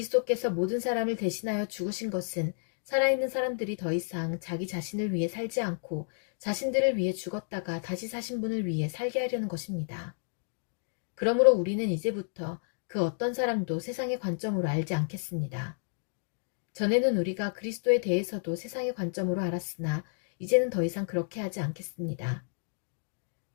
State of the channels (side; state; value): right; silent; digital silence